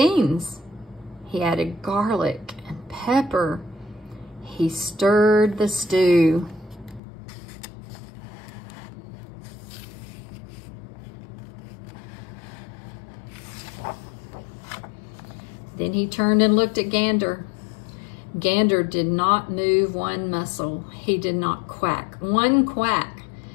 He added garlic and pepper. He stirred the stew. Then he turned and looked at Gander. Gander did not move one muscle. He did not quack one quack.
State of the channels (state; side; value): drops out; right; at 7.0 s